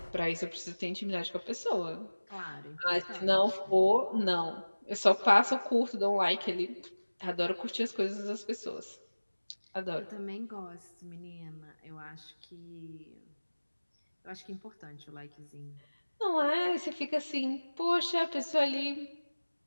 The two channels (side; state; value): both; inverted; correlation -1.00